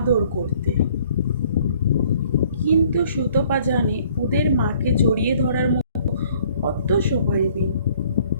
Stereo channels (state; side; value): inverted; both; correlation -0.59